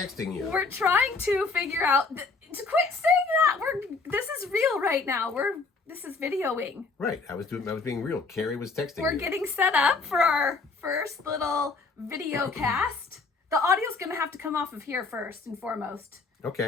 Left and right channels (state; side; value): quieter; right; 4.1 dB